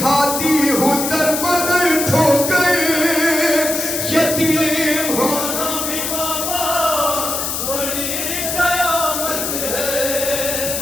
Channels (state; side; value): noise; left; hiss, 2 dB below the sound